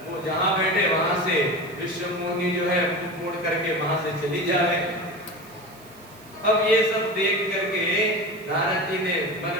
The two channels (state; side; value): noise; right; hiss, 24 dB below the sound